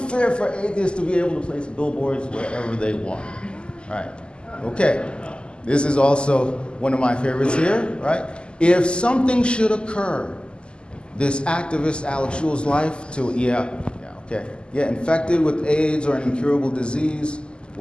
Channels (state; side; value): late; right; 0.050 ms